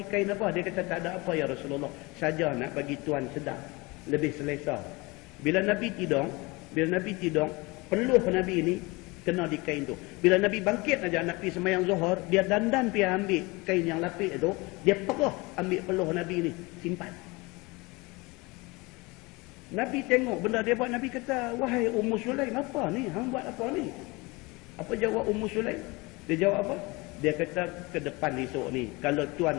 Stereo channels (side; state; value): right; quieter; 24.7 dB